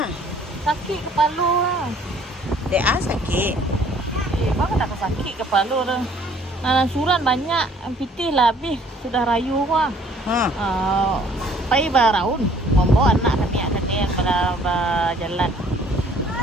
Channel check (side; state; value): both; normal; correlation 0.58